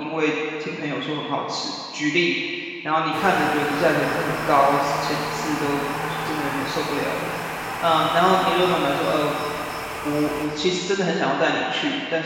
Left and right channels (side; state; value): both; identical; correlation 1.00